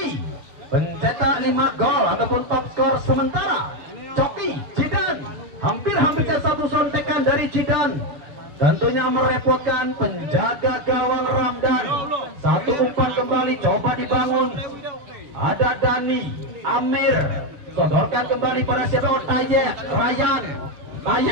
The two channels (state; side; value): late; left; 7.0 ms